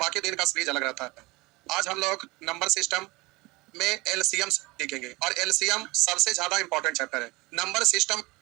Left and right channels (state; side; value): quieter; left; 23.1 dB